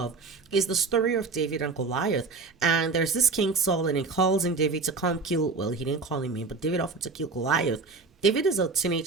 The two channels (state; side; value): quieter; left; 4.3 dB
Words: is the story of David and Goliath. And there's this King Saul, and he calls in David to come kill, well, he didn't call him in, but David offered to kill Goliath. David is a